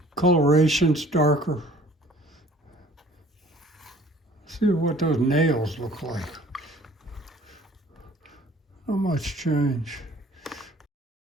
coloration's darker. See what those nails look like. Not much change.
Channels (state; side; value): normal; both; correlation 0.52